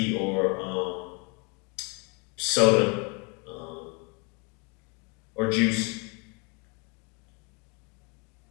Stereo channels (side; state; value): right; quieter; 32.5 dB